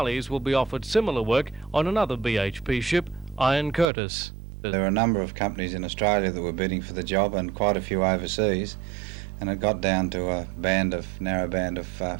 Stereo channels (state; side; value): drops out; left; at 3.9 s